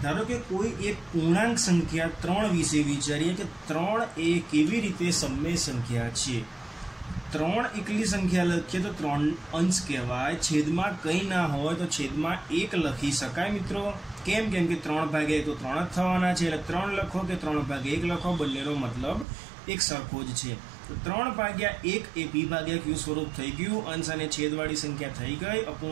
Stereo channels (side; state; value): left; drops out; at 19.2 s